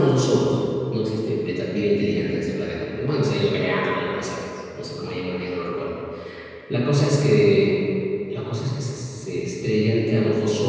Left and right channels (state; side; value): identical; both; correlation 1.00